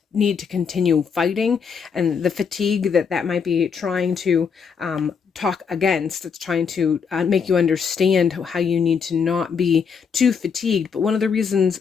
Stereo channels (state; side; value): quieter; right; 6.2 dB